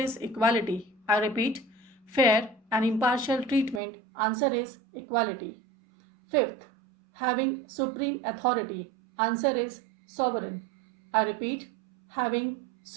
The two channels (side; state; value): left; drops out; at 3.8 s